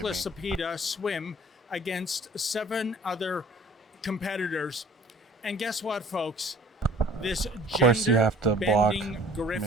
me. Cepeda swim against 7 other competitors. And guess what, folks? This Of course, you have to block, gender-bending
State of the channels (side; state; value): both; normal; correlation 0.51